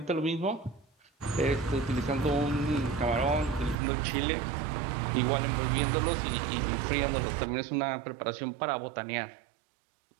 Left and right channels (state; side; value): drops out; left; at 3.8 s